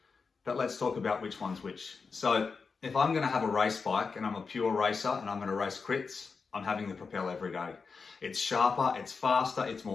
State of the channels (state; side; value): quieter; right; 5.0 dB